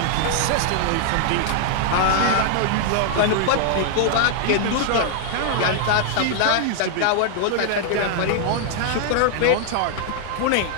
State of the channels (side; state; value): both; different; correlation -0.01